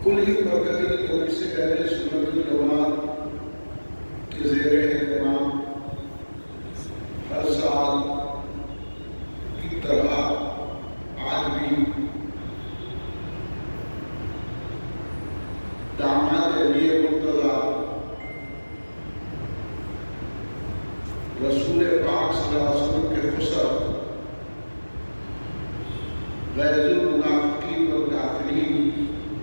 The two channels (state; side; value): inverted; both; correlation -1.00